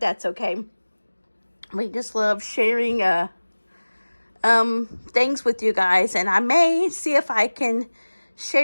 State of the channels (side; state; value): both; inverted; correlation -1.00